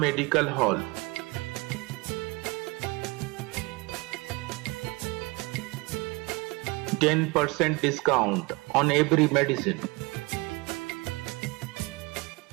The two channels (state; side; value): quieter; left; 25.3 dB